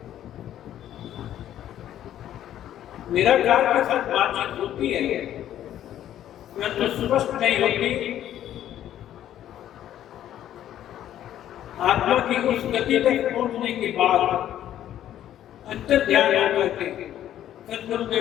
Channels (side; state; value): right; quieter; 11.6 dB